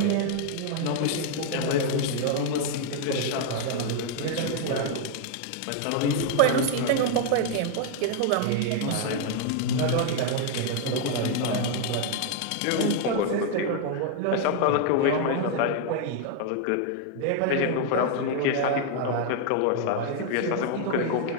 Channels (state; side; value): different; both; correlation 0.00